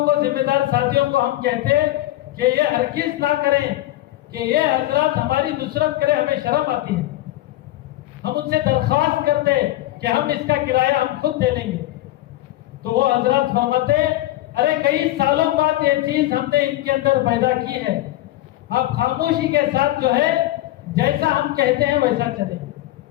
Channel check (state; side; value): quieter; right; 15.6 dB